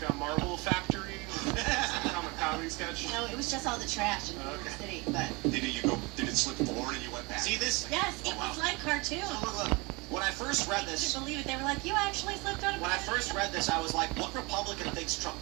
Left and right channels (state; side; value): quieter; left; 26.4 dB